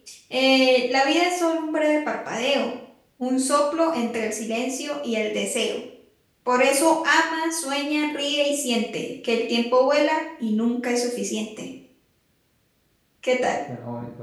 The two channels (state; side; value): identical; both; correlation 1.00